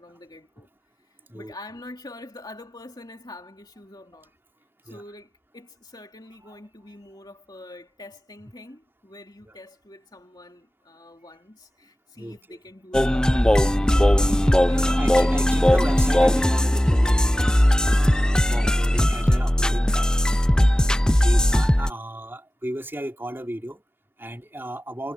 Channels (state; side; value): normal; both; correlation 0.95